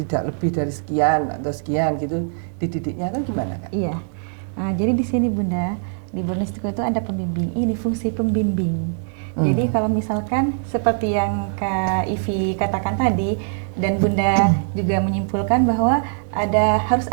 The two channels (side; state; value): left; silent; digital silence